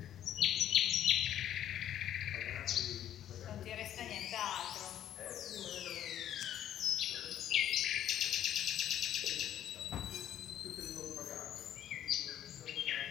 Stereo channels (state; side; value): quieter; right; 11.0 dB